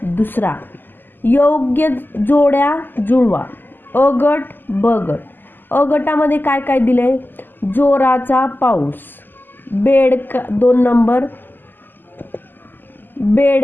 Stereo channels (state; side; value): late; right; 0.091 ms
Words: दुसरा. योग्य जोड्या जुळवा. अ गट ब गट. अ गटामध्ये काय काय दिले, जोराचा पाऊस. 2 नंबर,